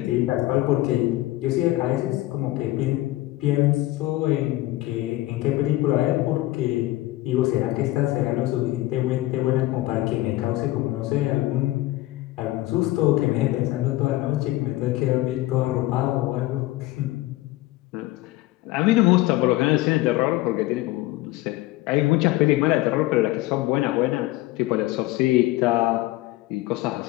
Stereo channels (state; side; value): quieter; right; 17.6 dB